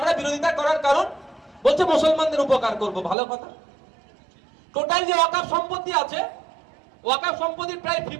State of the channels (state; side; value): drops out; left; at 3.2 s